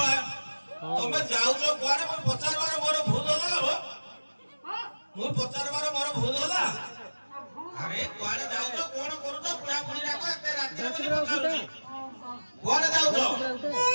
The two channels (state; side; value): inverted; both; correlation -1.00